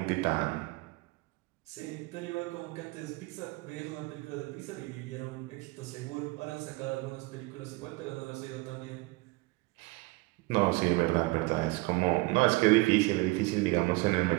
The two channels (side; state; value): left; quieter; 23.3 dB